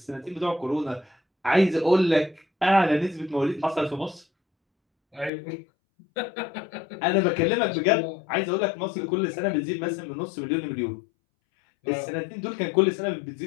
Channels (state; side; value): drops out; right; at 5.3 s